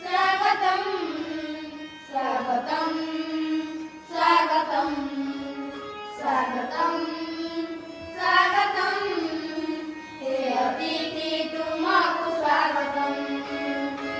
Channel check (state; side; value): identical; both; correlation 1.00